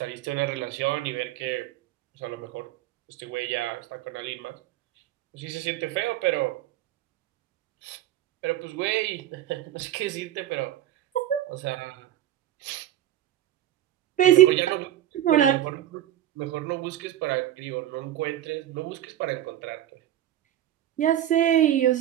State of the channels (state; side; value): quieter; left; 12.5 dB